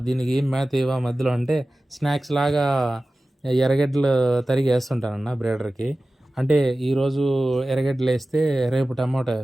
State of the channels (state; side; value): normal; both; correlation 0.96